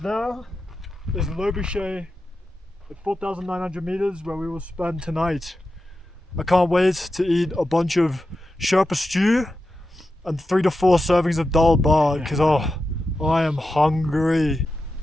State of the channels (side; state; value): both; normal; correlation 0.91